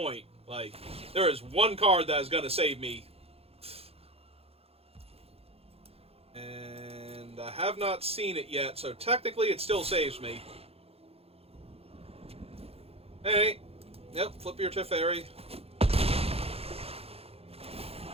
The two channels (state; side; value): late; left; 0.29 ms